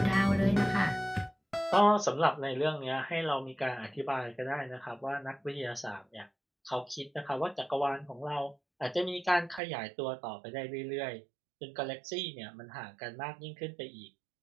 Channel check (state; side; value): drops out; left; at 9.6 s